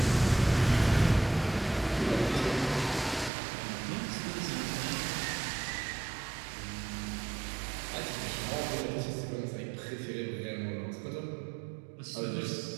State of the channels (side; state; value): left; drops out; at 3.3 s